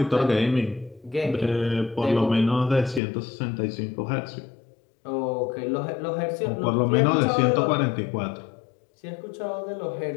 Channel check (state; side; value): drops out; right; at 3.0 s